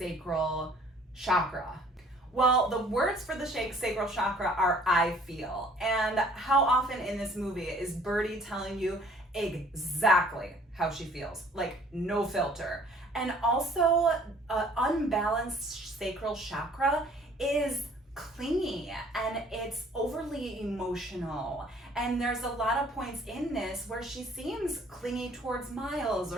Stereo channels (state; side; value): normal; both; correlation 0.56